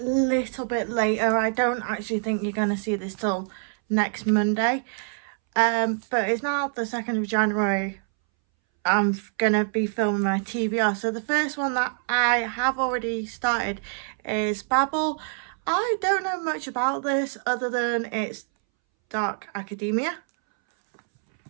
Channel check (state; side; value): silent; left; 61 dB below the other